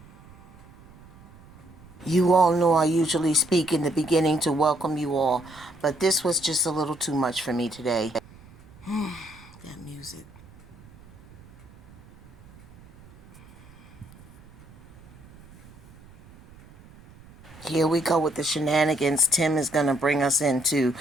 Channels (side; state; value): right; noise; rumble, 23 dB below the sound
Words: You all know I usually speak in the beginning to welcome you all, but this was just a little too much for me today. That music. Here we go with the shenanigans Tim is going to bring us into.